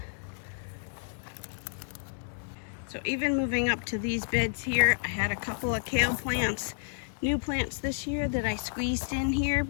So even moving up to these beds here, I had a couple of kale plants, new plants this year that I squeezed in here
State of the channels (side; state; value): right; silent; digital silence